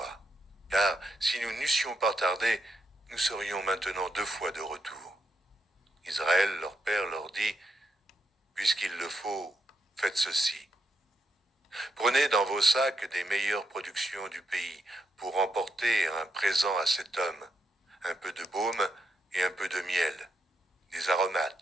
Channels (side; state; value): both; normal; correlation 0.81